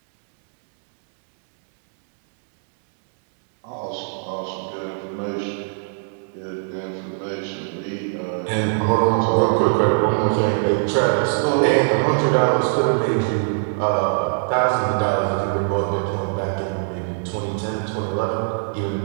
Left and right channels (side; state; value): left; silent; digital silence